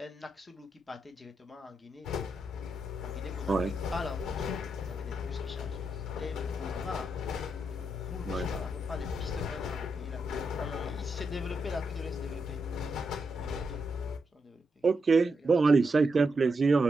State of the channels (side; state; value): both; normal; correlation 0.83